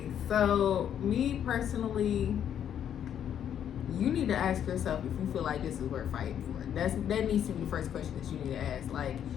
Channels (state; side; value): quieter; right; 9.4 dB